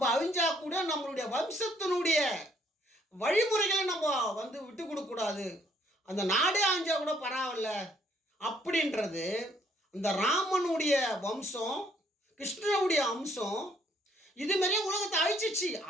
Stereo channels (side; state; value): both; normal; correlation 0.66